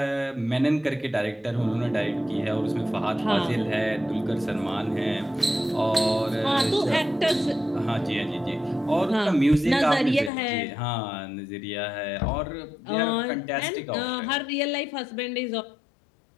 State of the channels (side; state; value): right; drops out; at 10.3 s